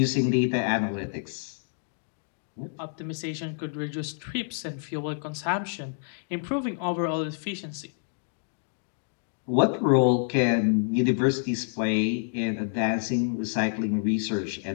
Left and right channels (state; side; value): silent; right; digital silence